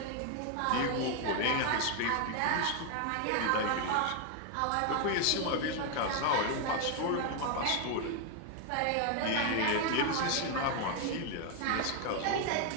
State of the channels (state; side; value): different; both; correlation 0.01